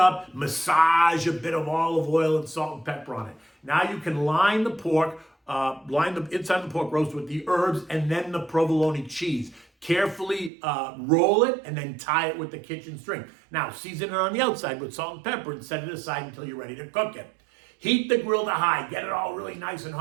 massage a bit of olive oil and salt and pepper on it. Now you can line the pork, line the inside of the pork roast with the herbs and then the provolone cheese. Carefully roll it and then tie it with the kitchen string. Now, season it on the outside with salt and pepper and set it aside until you're ready to cook it. Heat the grill to high. Get it all really nice and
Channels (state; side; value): drops out; left; at 10.5 s